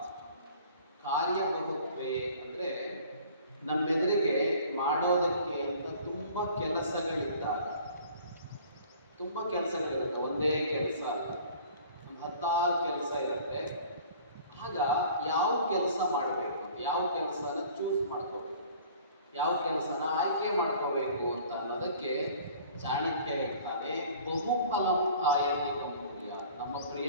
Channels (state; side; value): inverted; both; correlation -0.49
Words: ಕಾರ್ಯಬಹುತ್ವೇ ಅಂದರೆ ನಮ್ಮೆದುರಿಗೆ ಮಾಡೋದಕ್ಕೆ ಅಂತ ತುಂಬ ಕೆಲಸಗಳಿದ್ದಾಗ, ಒಂದೇ ಕೆಲಸ ಅಲ್ಲ, ಒಂದು 10 ಕೆಲಸ ಇರುತ್ತೆ. ಆಗ ಯಾವ ಕೆಲಸ ಮಾಡಬೇಕು, ಯಾವ ಕೆಲಸನ ಚೂಸ್ ಮಾಡ್ಕೋಬೇಕು, ಯಾವ ಕೆಲಸನ ಆಯ್ಕೆ ಮಾಡ್ಕೋಬೇಕು ಅಂತ ಅನ್ನೋದಕ್ಕೆ ಚಾಣಕ್ಯ ಹೇಳ್ತಾನೆ, ಬಹುಫಲಂ ಆಯತಿಕಂ ಕುರ್ಯಾತ್. ನಮ್ಮ